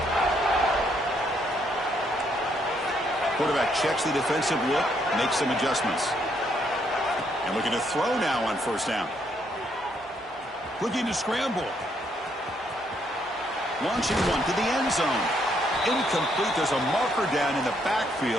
Quarterback checks the defensive look, makes some adjustments. And looking to throw now on 1st down. Looking to scramble. Launching one to the end zone. Incomplete. There's a marker down in the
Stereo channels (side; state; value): both; normal; correlation 0.72